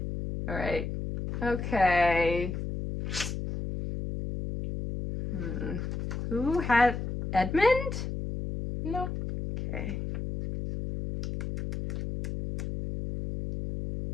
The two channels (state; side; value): noise; left; hum, 4 dB below the sound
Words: Alright. Okay. Who had Edmund? No. Okay.